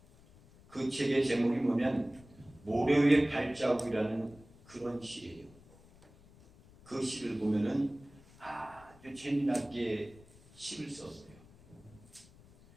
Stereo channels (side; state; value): left; noise; rumble, 24 dB below the sound